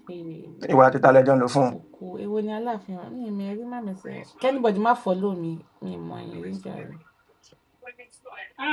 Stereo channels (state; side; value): identical; both; correlation 1.00